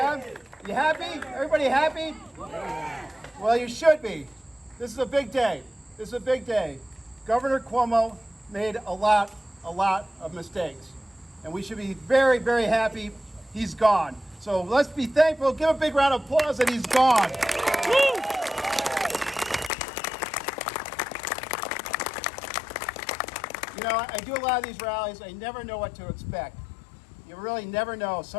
You happy? Everybody happy? Well, you should be. This is a big day. This is a big day. Governor Cuomo made a lot of mistakes. And we should be very, very happy he's gone. So let's be thankful. Give a big round of applause that he's gone. Woo! You know, I do a lot of these rallies. I never know what to expect. You really never know.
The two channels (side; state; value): right; drops out; at 19.7 s